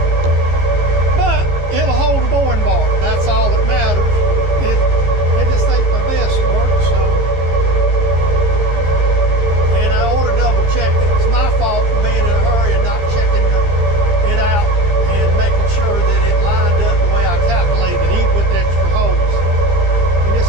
but it'll hold a boring bar. That's all that matters. It just ain't my best work, so. And I ought to double check it. It's my fault for being in a hurry and not checking it out and making sure that it lined up the way I calculated, even with the extra holes. And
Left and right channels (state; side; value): late; left; 15 ms